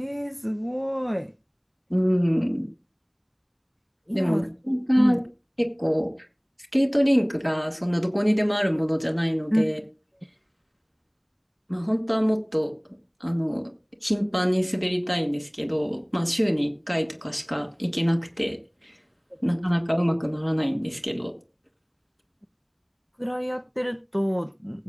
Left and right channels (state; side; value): identical; both; correlation 1.00